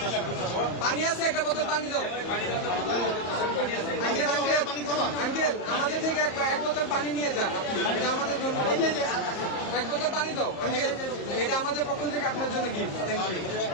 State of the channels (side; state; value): right; late; 34 ms